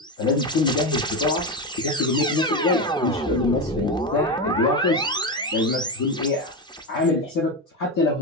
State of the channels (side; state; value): both; normal; correlation 0.15